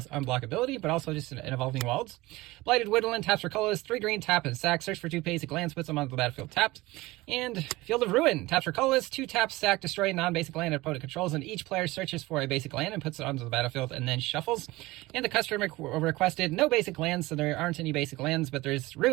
unblockability, but also just an Evolving Wilds. Blighted Woodland, taps for colorless, 3 green, tap and sack. Search for 2 basic lands, puts them onto the battlefield tapped. And Field of Ruin, taps for colorless, 2 taps, sack, destroy a non-basic land opponent controls, and each player searches for a basic land and puts it onto the battlefield and then shuffles. And the customer requested no basic lands, so there aren't any basic lands, but there's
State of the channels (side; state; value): left; quieter; 20.1 dB